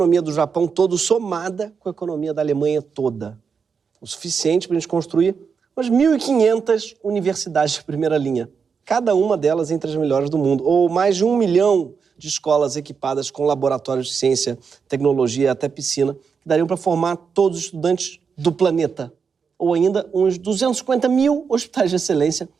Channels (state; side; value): quieter; left; 6.0 dB